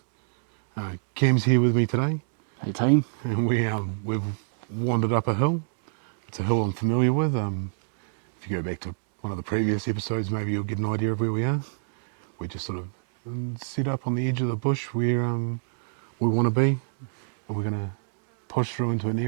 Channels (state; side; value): silent; left; digital silence